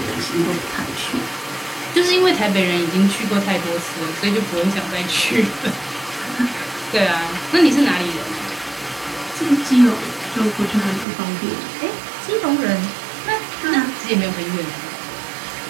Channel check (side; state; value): left; drops out; at 11.1 s